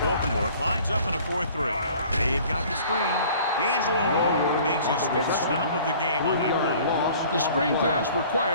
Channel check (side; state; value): both; inverted; correlation -0.50